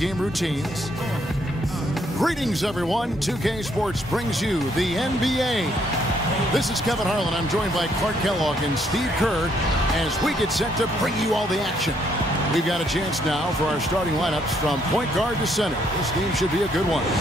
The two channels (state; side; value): normal; both; correlation 0.70